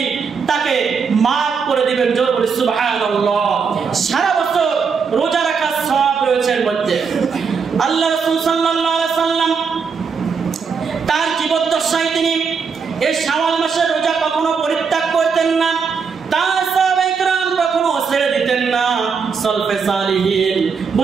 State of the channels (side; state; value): left; quieter; 5.7 dB